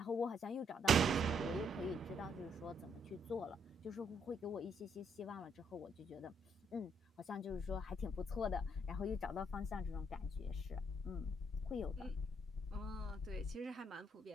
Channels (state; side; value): normal; both; correlation 0.71